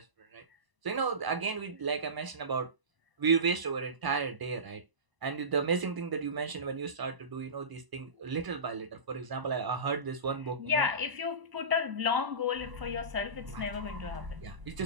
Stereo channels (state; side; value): late; left; 1.0 ms